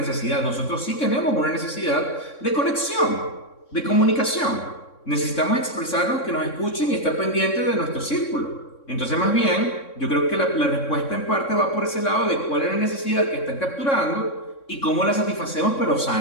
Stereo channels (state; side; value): late; right; 3.6 ms